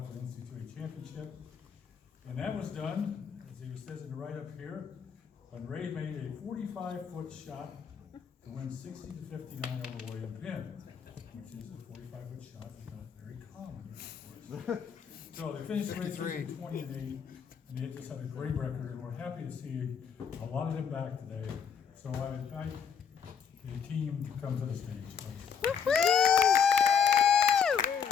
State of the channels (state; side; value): quieter; right; 7.1 dB